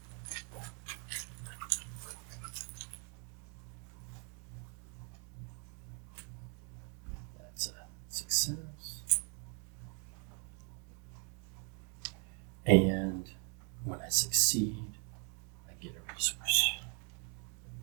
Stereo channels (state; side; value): quieter; left; 39.2 dB